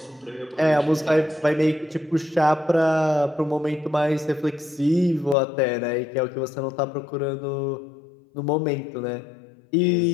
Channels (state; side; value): drops out; right; at 5.4 s